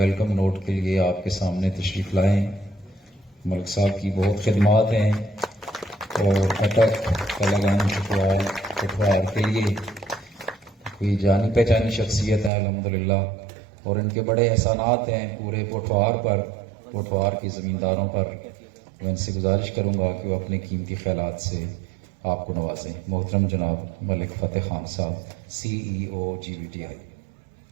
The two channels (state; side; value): drops out; left; at 12.5 s